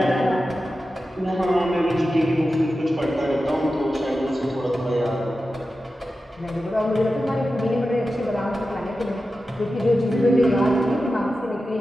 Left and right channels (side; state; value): both; normal; correlation 0.92